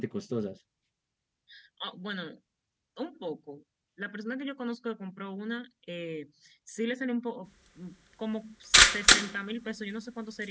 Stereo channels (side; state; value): both; identical; correlation 1.00